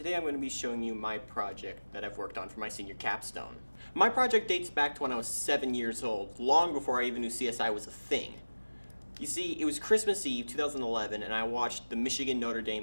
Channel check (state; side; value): inverted; both; correlation -1.00